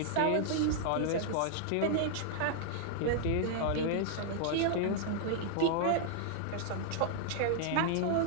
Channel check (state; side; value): different; both; correlation -0.01